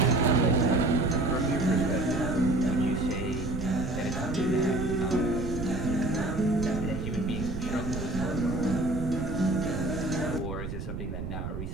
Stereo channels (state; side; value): noise; right; rumble, 6 dB below the sound